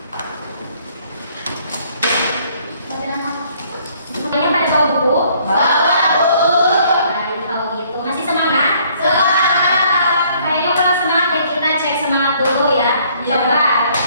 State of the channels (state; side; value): inverted; both; correlation -0.62